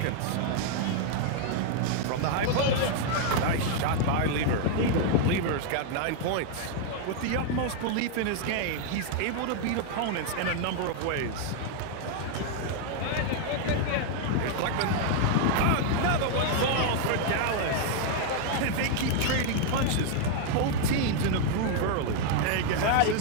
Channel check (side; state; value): both; different; correlation 0.00